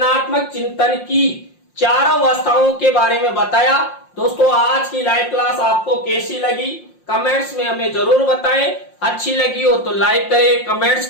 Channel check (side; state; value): right; late; 5.6 ms